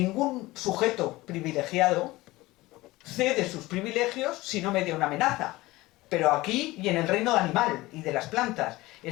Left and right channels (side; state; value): right; quieter; 19.5 dB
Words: sujeto privilegiado cede sus privilegios si no media una amenaza. Pero aquí y en el reino animal y de las plantas.